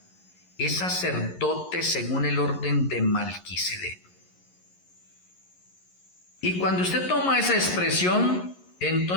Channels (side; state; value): right; late; 11 ms